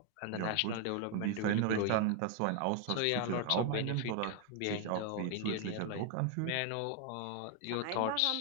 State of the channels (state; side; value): different; both; correlation 0.01